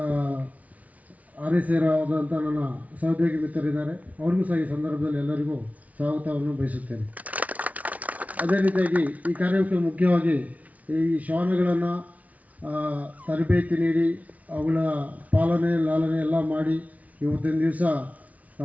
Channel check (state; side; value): late; left; 0.070 ms